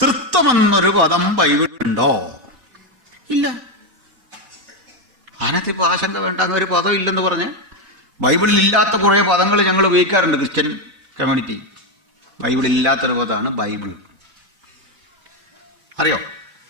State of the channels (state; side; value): late; left; 4.1 ms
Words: എന്നൊരു പദം ബൈബിളുണ്ടോ? ഇല്ല. അതിനകത്തിപ്പോൾ ആശങ്ക വേണ്ട, അങ്ങനെ ഒരു പദം ഇല്ലെന്ന് പറഞ്ഞ്. ബൈബിളിൽ ഇല്ലാത്ത കുറേ പദങ്ങൾ ഞങ്ങൾ ഉപയോഗിക്കാറുണ്ട് ക്രിസ്ത്യൻ കമ്മ്യൂണിറ്റി. ബൈബിളില്ലാത്തൊരു പദമാണ് ബൈബിൾ. അറിയോ?